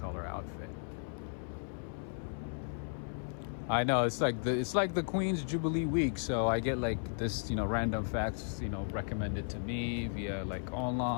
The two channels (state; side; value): silent; right; 54 dB below the other